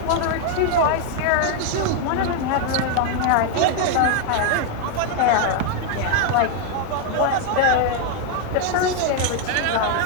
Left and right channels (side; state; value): both; different; correlation 0.00